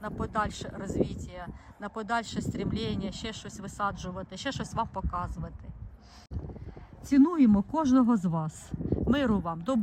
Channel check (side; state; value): both; identical; correlation 1.00